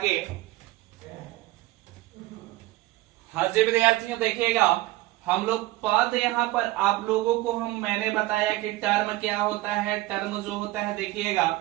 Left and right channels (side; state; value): left; quieter; 18.2 dB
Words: हाँ जी विद्यार्थियों, देखिएगा हम लोग पद, यहाँ पर आप लोगों को मैंने बताया कि टर्म क्या होता है। टर्म जो होता है